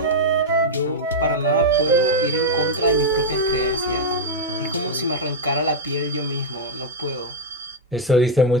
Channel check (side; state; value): both; normal; correlation -0.02